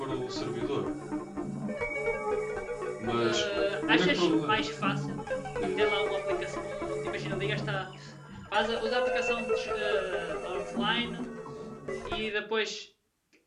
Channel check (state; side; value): identical; both; correlation 1.00